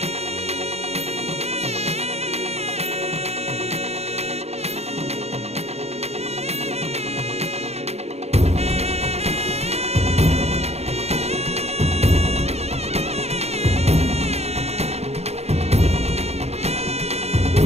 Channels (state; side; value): late; left; 0.31 ms